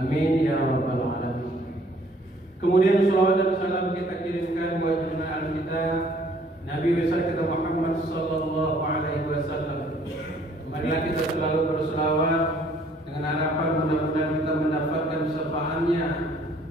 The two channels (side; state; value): both; normal; correlation 0.60